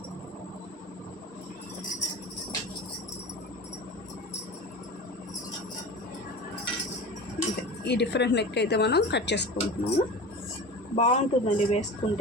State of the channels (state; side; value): normal; both; correlation 0.33